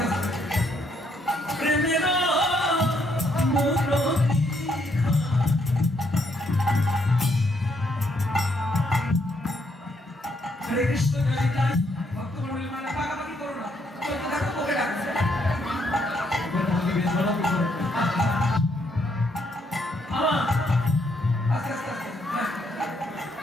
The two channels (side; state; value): both; normal; correlation 0.73